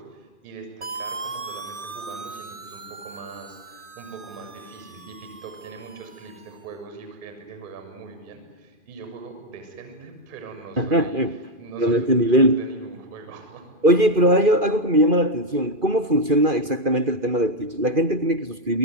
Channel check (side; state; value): left; late; 2.4 ms